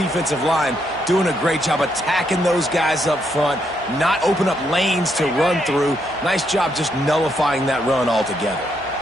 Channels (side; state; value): both; normal; correlation 0.77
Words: line doing a great job attacking those guys up front, not open up lanes to run through. Nice job just nullifying that run altogether.